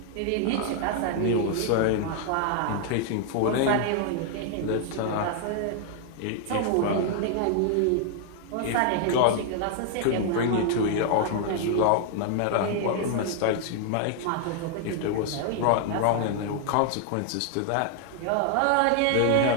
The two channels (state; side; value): different; both; correlation 0.00